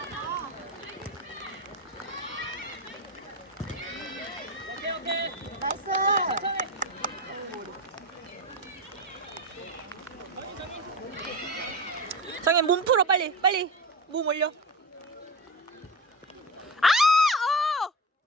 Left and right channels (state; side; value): normal; both; correlation 0.21